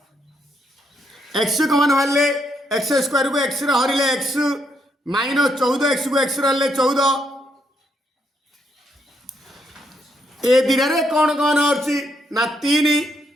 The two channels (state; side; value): normal; both; correlation 0.76